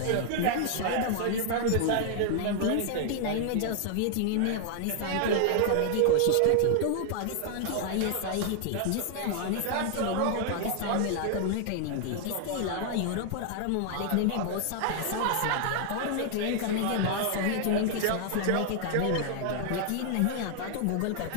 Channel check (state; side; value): different; both; correlation 0.00